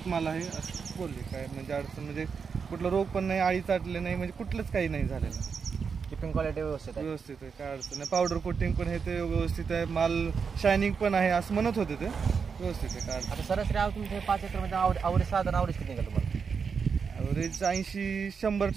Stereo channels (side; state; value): left; quieter; 5.9 dB